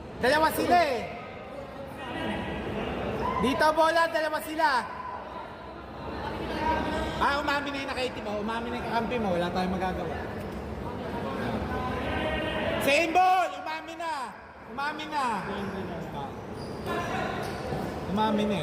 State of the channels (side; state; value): both; identical; correlation 1.00